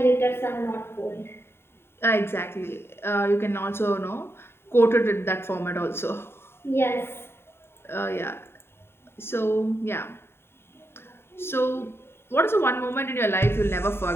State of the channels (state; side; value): late; right; 0.11 ms